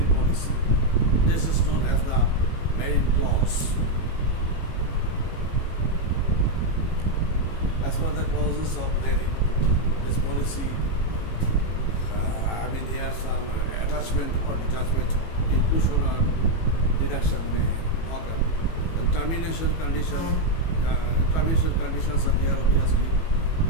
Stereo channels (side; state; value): right; late; 18 ms